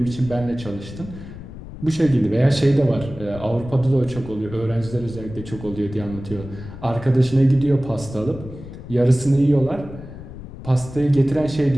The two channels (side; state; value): left; noise; rumble, 13 dB below the sound